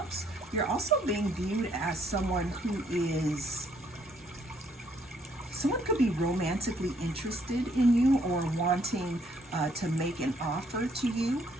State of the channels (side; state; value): both; normal; correlation 0.68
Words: you're also being viewed as someone who is someone could be romantically interested in you or wanting to make an offer to you